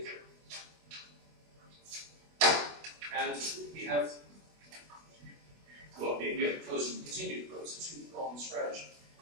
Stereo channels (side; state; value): left; late; 24 ms